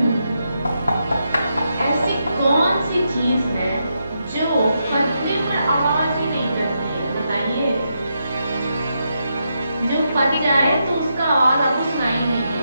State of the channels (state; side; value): inverted; both; correlation -0.83